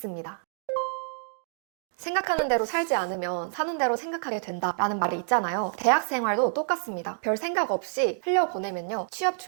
생각하는 대로 살지 않으면 사는 대로 생각하게 된다라는 말이 있잖아요. 대학 생활도 똑같습니다. 별 생각 없이 흘려보내면요. 취업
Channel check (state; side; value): silent; left; digital silence